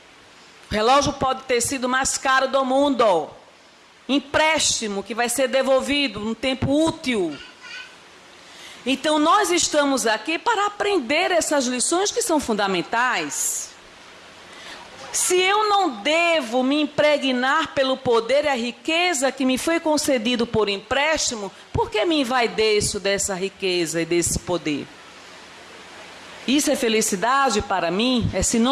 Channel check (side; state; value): both; identical; correlation 1.00